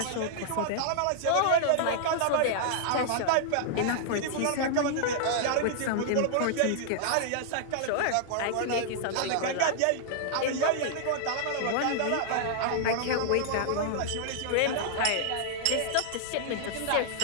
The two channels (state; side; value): different; both; correlation -0.01